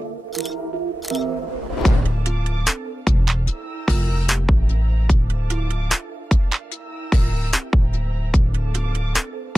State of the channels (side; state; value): both; normal; correlation 0.96